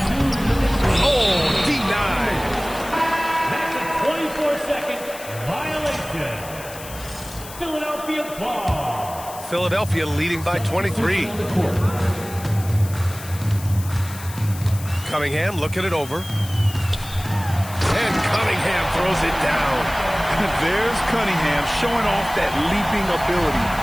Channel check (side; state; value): left; noise; hiss, 15 dB below the sound